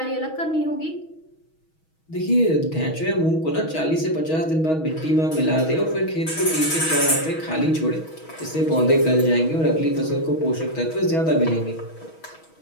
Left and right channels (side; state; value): right; late; 6.3 ms